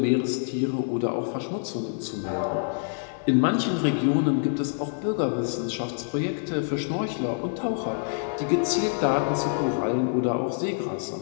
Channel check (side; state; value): right; silent; digital silence